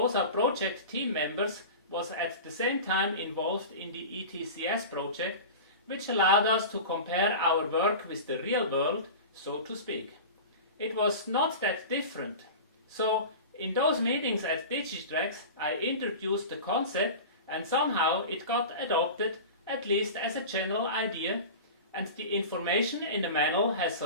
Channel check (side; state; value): both; inverted; correlation -0.32